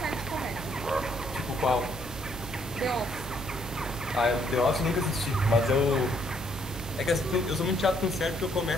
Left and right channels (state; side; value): noise; right; hum, 11 dB below the sound